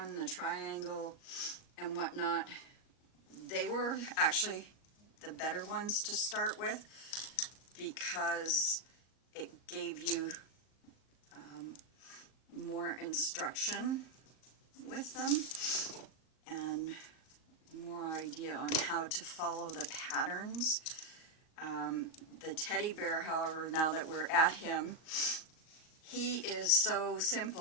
the triangle, and whatnot, they were actually the better ones to start with because it gave you more instruction with them and more idea on how to follow the patterns. The teddy bear, however, now that we're at him, he is so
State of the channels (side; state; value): right; late; 38 ms